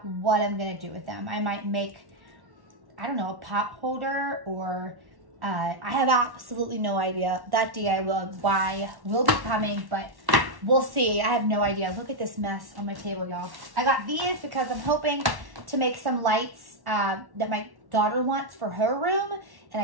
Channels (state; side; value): late; left; 1.1 ms